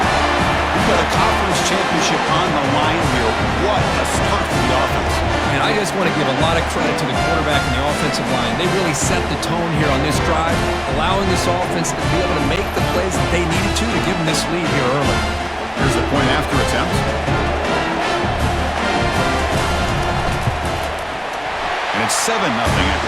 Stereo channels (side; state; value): both; identical; correlation 1.00